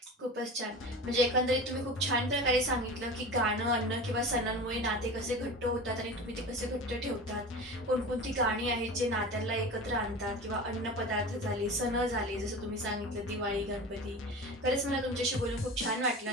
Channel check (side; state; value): both; normal; correlation 0.33